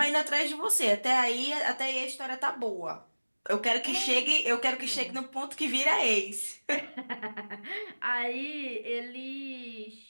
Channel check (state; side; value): inverted; both; correlation -1.00